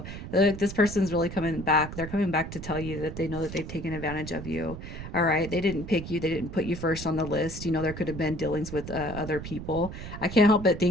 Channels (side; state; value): right; noise; rumble, 9 dB below the sound